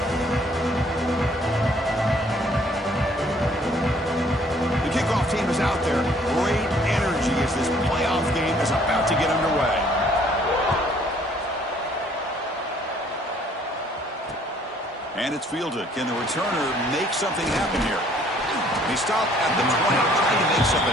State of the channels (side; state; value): both; normal; correlation 0.61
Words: And it's fielded. Can the returner make something happen here? He stopped at the 20, trying to make